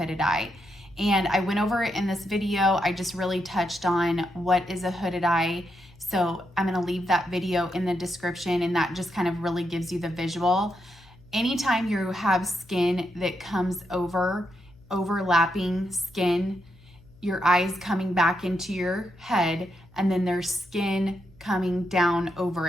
eye. And I went over it in this video. I just really touched on what is a hooded eye. So I'm gonna leave that video in the description, and that just kind of really gives you the visual. Anytime you have skin that comes overlapping skin, your eyes coming back into your head, and then there's skin coming down over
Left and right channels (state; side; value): noise; left; hum, 26 dB below the sound